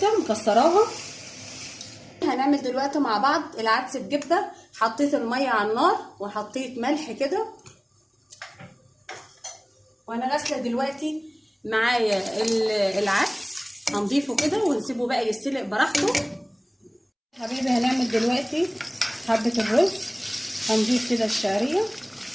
مكسراها. هنعمل دلوقتي مع بعض العدس بجبه. حطيت الميه على النار وحطيت ملح كده، وانا غاسله دلوقتي معايا العدس. هنضيفه كده ونسيبه بقى يستلق براحته. حبيبي هنعمل دلوقتي حبه الرز. هنضيف كده الشعريه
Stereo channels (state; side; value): identical; both; correlation 1.00